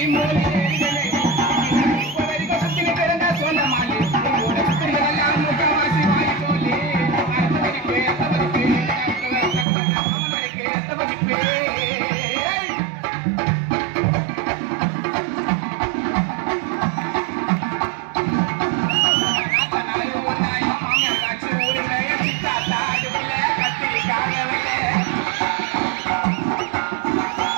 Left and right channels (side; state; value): left; drops out; at 9.7 s